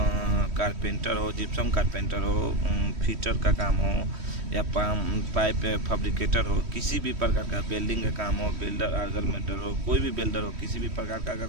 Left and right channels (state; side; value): late; left; 3.1 ms